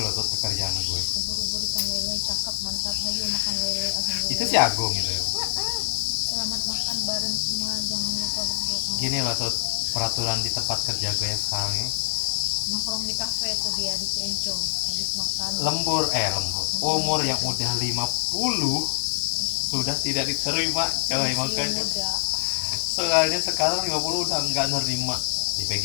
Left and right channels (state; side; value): silent; right; 62 dB below the other